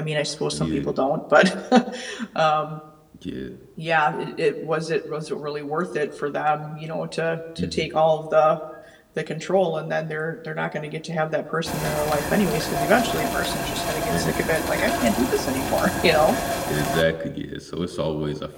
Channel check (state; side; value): identical; both; correlation 1.00